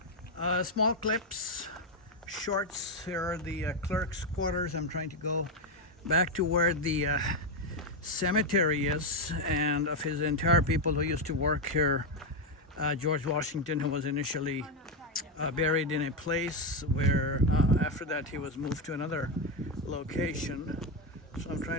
small clips, shorts. Here are the clerk's quarters. I'm trying to go back to where the cemetery is, and of his entire people who used to work here. George Washington, who was initially buried in a place where after that he was moved to another location. So I'm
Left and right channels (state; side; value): normal; both; correlation 0.06